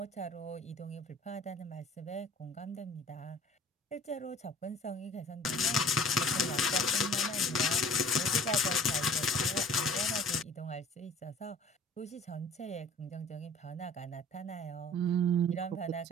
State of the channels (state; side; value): normal; both; correlation 0.48